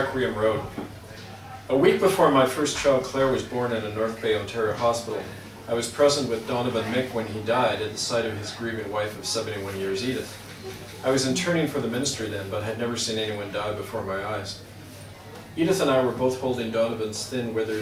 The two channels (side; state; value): both; identical; correlation 1.00